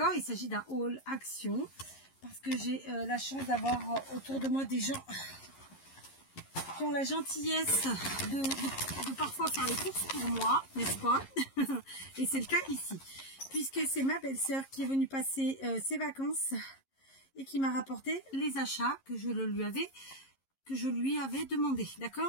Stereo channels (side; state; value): right; late; 11 ms